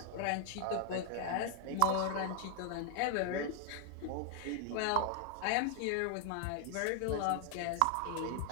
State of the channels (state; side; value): different; both; correlation 0.00